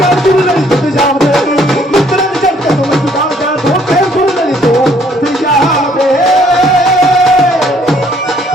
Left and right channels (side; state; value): both; normal; correlation 0.63